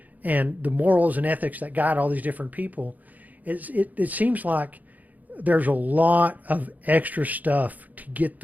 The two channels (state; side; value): late; left; 0.080 ms